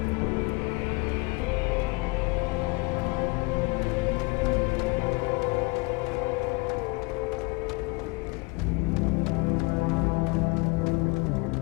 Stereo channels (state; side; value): quieter; right; 27.4 dB